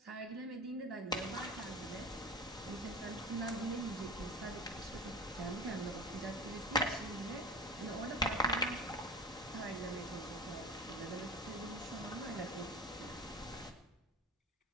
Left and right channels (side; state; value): both; normal; correlation 0.32